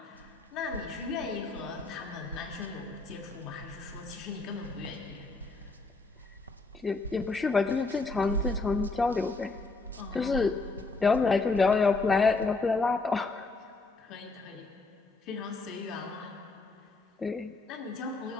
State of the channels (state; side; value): quieter; right; 3.7 dB